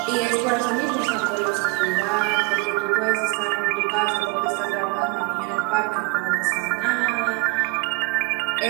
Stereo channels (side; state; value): left; quieter; 26.0 dB